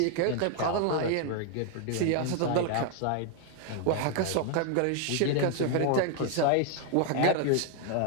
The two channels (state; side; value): different; both; correlation 0.00